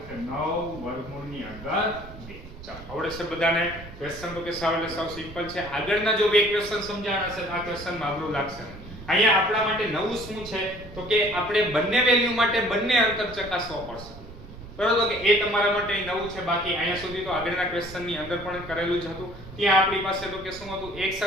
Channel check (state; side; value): noise; right; rumble, 15 dB below the sound